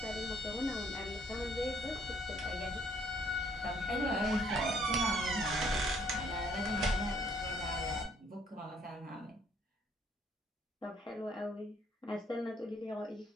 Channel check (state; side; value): normal; both; correlation 0.65